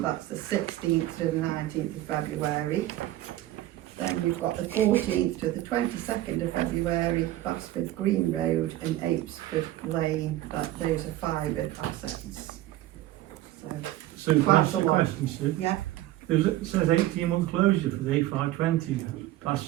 That's the 16th to the 19th of February. Then we've got the 14th to the 22nd of February, Basford Green Road and Apesford Lane. Those are fibre assets. So Quite that's a the lot. question, Sue. Yeah. It says 18-month closure for the A520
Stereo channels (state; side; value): quieter; left; 15.2 dB